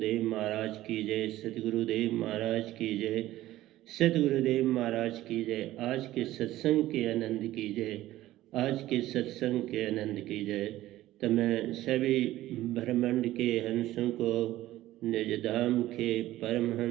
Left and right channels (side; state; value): left; quieter; 15.3 dB